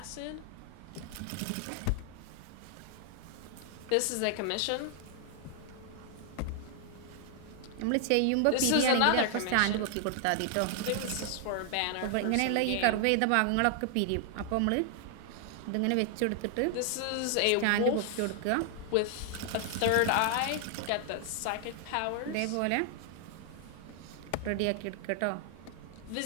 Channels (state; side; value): different; both; correlation 0.00